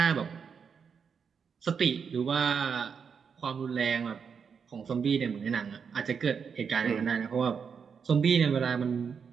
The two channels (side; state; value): left; quieter; 6.4 dB